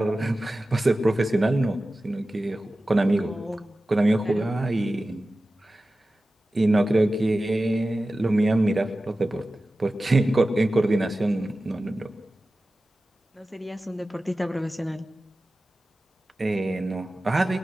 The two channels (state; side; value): normal; both; correlation 0.95